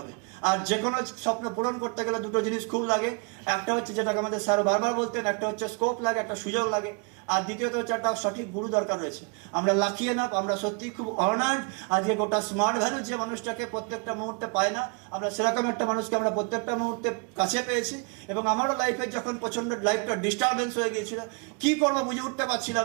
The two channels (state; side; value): quieter; left; 34.7 dB